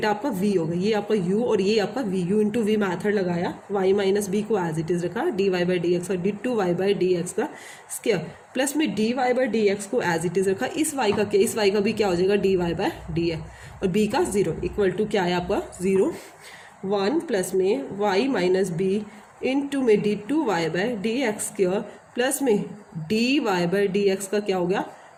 आपका v होगा, ये आपका u और ये आपका v, u into we method लगाया, y माइनस बी को एज इट इज़ रखा, dy बाई डी एक्स और d2y बाई डी एक्स का स्क्वायर प्लस में dy बाई डी एक्स को एज इट इज़ रखा, इस y का क्या, इस y का भी क्या हो जाएगा dy बाई डी एक्स और b का 0 इक्वल टू क्या है आपका 0, 1 प्लस में y माइनस बी इंटू में d2y by D x square plus में dy बाई डी एक्स का क्या हो गया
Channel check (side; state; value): both; identical; correlation 1.00